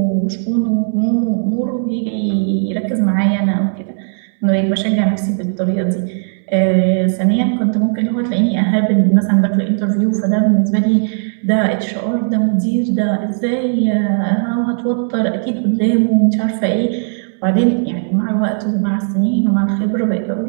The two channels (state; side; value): silent; left; digital silence